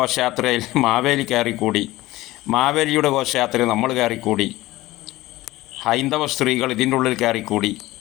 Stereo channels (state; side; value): quieter; right; 17.8 dB